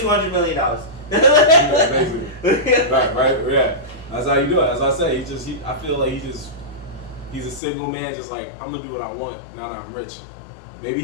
million. right, yeah. That's how you do it. As I say, I feel like he's a single man, just like I'm gonna do what I want now that I'm rich. Maybe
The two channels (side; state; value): right; drops out; at 7.6 s